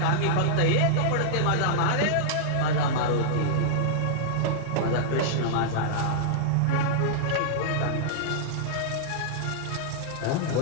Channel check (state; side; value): different; both; correlation -0.02